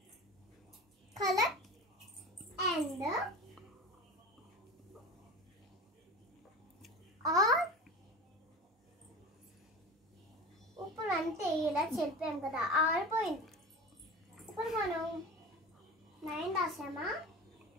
కలర్ అండ్ ఆర్ ఇప్పుడు అంటే ఇలా చెప్పాం కదా, ఆరిపోయింది. ఇప్పుడు మనం 9 రాసామా,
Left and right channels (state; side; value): normal; both; correlation 0.33